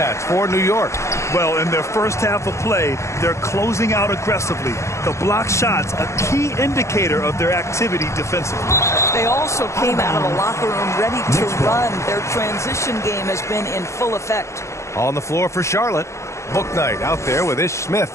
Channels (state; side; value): late; right; 0.14 ms